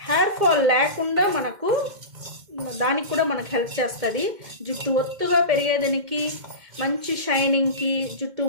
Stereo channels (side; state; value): left; late; 2.1 ms